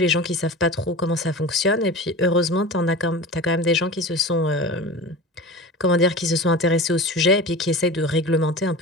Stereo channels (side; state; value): both; normal; correlation 0.32